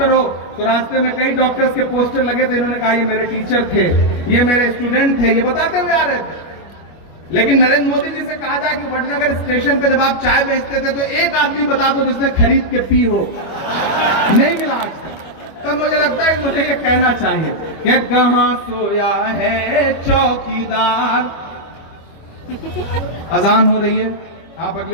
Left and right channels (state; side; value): late; right; 25 ms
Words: हो, तो रास्ते में कई डॉक्टर्स के पोस्टर लगे थे, इन्होंने कहा ये मेरे टीचर थे, ये मेरे स्टूडेंट थे, ये बताते हुए आ रहे थे। लेकिन नरेंद्र मोदी जी से कहा जाए कि वडनगर स्टेशन पे जब आप चाय बेचते थे तो एक आदमी बता दो जिसने खरीद के पी हो, नहीं मिला आज तक। तब मुझे लगता है मुझे ये कहना चाहिए कि कहां सोया है चौकीदार। अजान हो रही है, आप